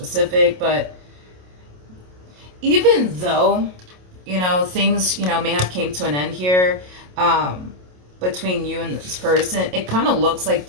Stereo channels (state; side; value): late; left; 27 ms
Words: but even though things, may have came to an end here between you and this person, it kind of looks like